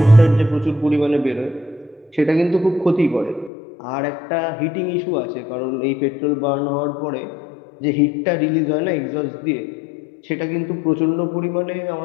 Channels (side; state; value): right; drops out; at 3.5 s